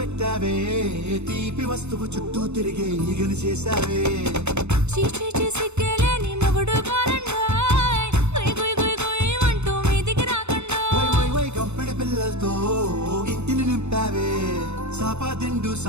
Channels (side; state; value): left; late; 0.82 ms